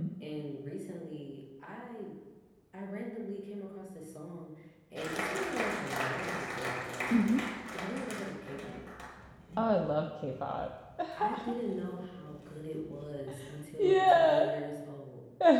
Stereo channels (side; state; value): both; identical; correlation 1.00